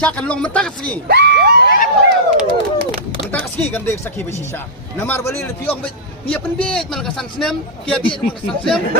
long minta kasaki. Minta kasaki kan dia kasaki bersisya. Nomor balik lebih orang dia pendek malakasan senam, dia biar malakasan senam,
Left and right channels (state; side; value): normal; both; correlation -0.11